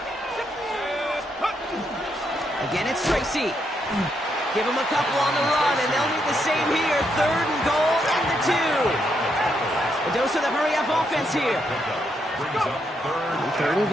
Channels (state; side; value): normal; both; correlation 0.78